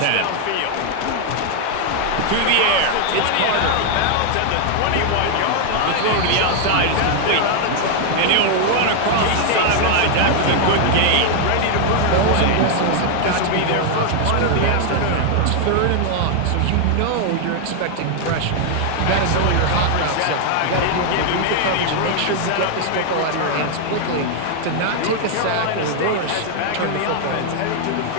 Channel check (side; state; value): both; different; correlation 0.00